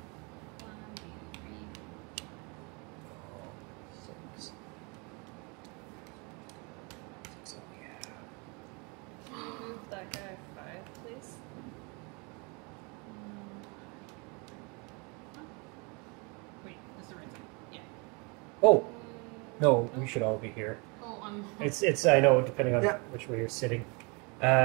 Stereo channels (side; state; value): left; quieter; 30.8 dB